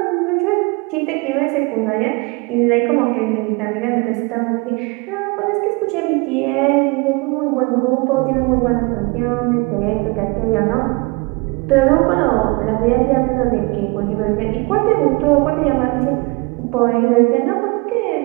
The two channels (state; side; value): quieter; left; 27.5 dB